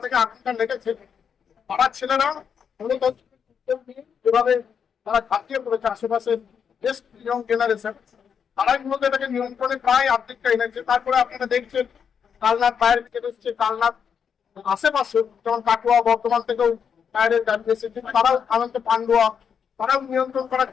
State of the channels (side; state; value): right; quieter; 7.1 dB